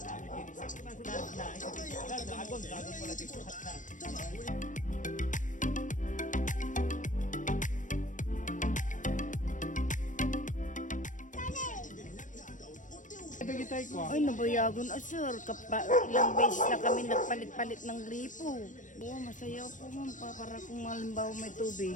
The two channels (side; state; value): right; late; 0.37 ms